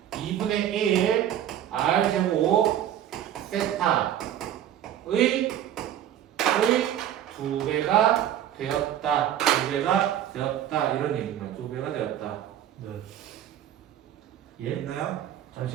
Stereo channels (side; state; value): left; quieter; 11.0 dB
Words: 2분의 1 r 제곱 세타의 2배가 되었다. 2배가 되었다. 이런 얘기입니다. 2배가 되었다. 네. 예? 됐나요?